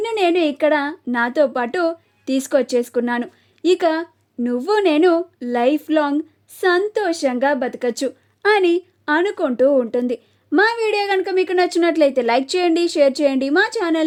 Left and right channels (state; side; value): identical; both; correlation 1.00